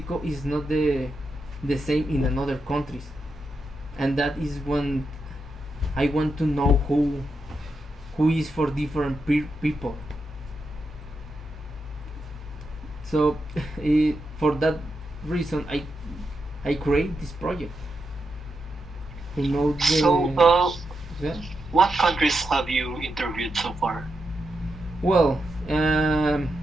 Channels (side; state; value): both; normal; correlation 0.85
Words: is not the same in another countries, and that is when I want to know who is for different people. So for that reason, I create this project to know So, the, yeah. what countries have you interviewed so far? Well, um,